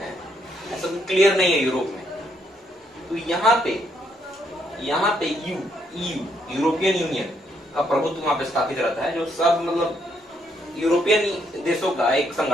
है, ऐसा कोई क्लियर नहीं है यूरोप में। तो यहाँ पे यूरोपियन यूनियन का प्रभुत्व वहां पे स्थापित रहता है, जो सब मतलब यूरोपियन देशों का एक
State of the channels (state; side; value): normal; both; correlation 0.73